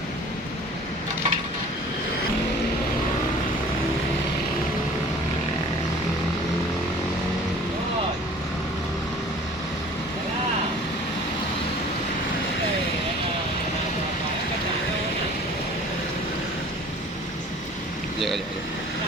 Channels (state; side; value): normal; both; correlation 0.48